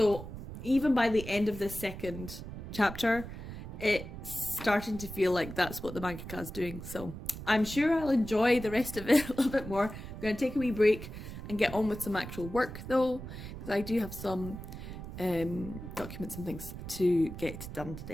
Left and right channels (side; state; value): right; noise; rumble, 10 dB below the sound